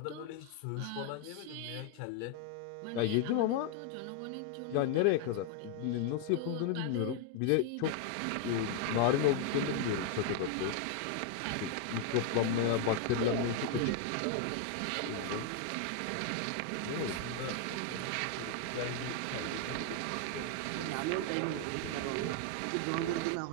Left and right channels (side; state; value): both; different; correlation 0.00